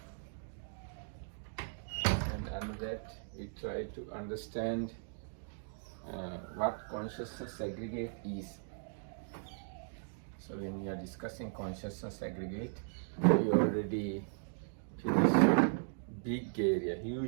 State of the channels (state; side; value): silent; left; digital silence